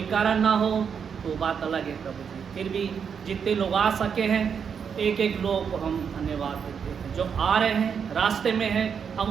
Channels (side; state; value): left; quieter; 6.9 dB